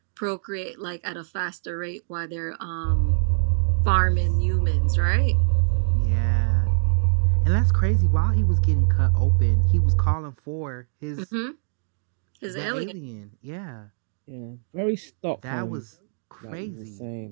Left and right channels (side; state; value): left; silent; digital silence